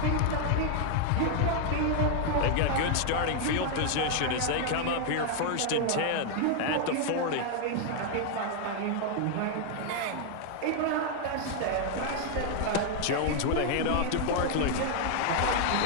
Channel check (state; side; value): different; both; correlation 0.00